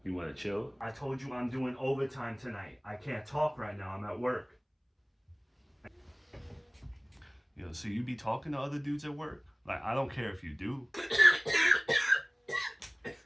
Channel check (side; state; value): both; identical; correlation 1.00